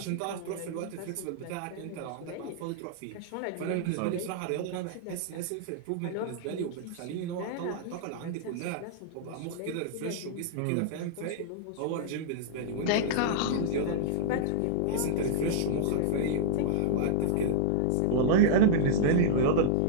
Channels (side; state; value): both; different; correlation -0.02